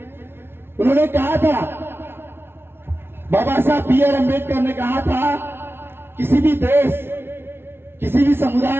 उन्होंने कहा था, बाबा साहब BR अम्बेडकर ने कहा था, किसी भी देश, किसी भी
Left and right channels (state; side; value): late; left; 0.11 ms